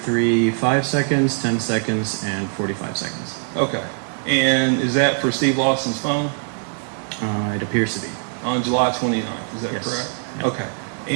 5 seconds, 10 seconds, and 45 seconds. Okay. And is that for Steve Lawson's phone? It appears to be. On July 29th, is that Yes. correct? Yep. Okay.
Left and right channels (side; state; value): left; silent; 57 dB below the other